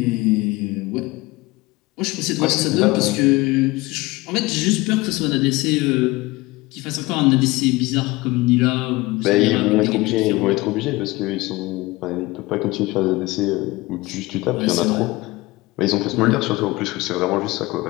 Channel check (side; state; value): right; quieter; 21.3 dB